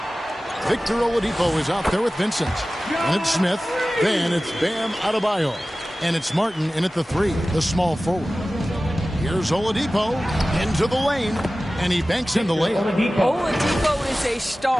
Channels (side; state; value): both; normal; correlation 0.96